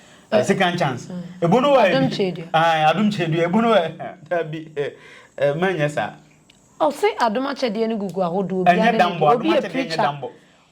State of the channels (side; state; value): both; identical; correlation 1.00